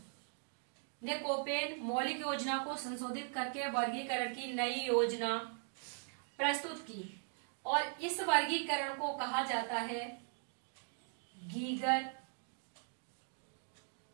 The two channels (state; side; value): silent; left; 51 dB below the other